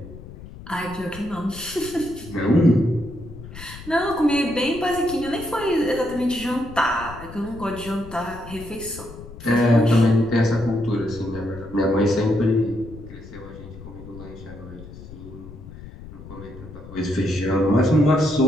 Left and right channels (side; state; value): left; noise; rumble, 15 dB below the sound